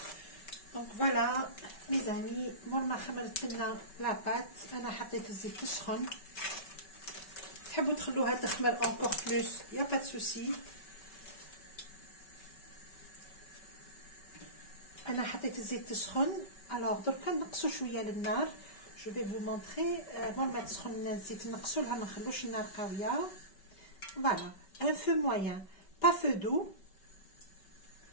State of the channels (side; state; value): right; late; 5.3 ms